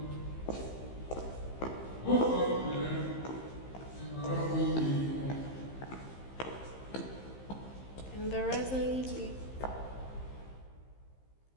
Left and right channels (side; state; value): right; late; 15 ms